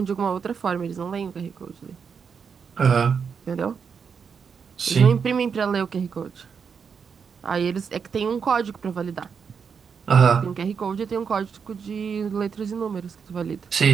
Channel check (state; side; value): quieter; left; 6.3 dB